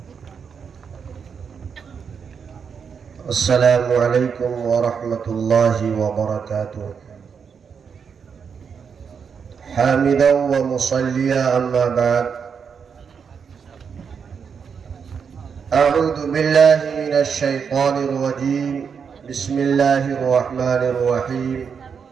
अस्सलामु अलैकुम वरहमतुल्लाहि वबरकातुह। हामिदन व मुसल्लिया अम्मा बाद। अऊज़ु बिल्लाहि मिनश शैतानिर रजीम। बिस्मिल्लाहिर रहमानिर रहीम।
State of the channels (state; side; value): quieter; left; 6.5 dB